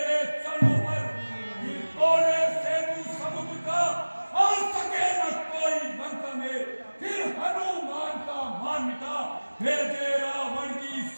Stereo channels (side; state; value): both; inverted; correlation -1.00